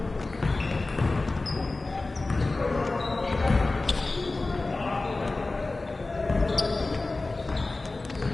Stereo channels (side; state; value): right; quieter; 3.3 dB